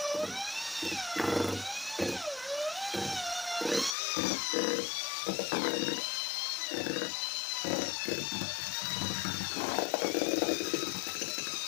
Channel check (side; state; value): right; drops out; at 4.0 s